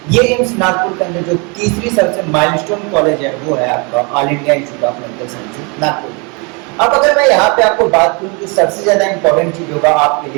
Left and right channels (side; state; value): left; quieter; 32.0 dB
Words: ये एम्स नागपुर के अंदर जो तीसरी सबसे माइलस्टोन कॉलेज है वो है आपका all India institute of medical sciences Nagpur. अब अगर मैं यहाँ पे आपको बात करूँ कि सबसे ज्यादा इंपॉर्टेंट चीज होगा आपके